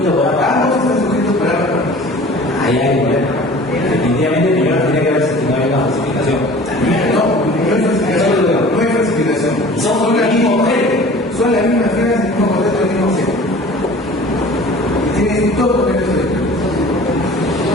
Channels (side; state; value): both; normal; correlation 0.44